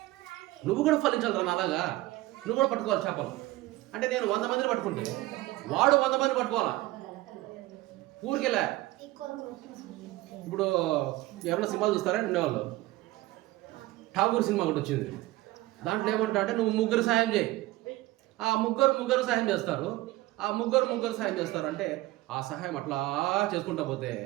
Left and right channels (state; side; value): quieter; left; 18.3 dB